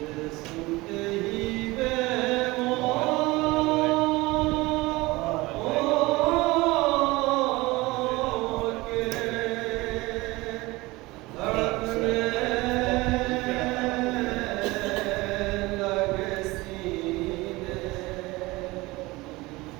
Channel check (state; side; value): quieter; left; 21.4 dB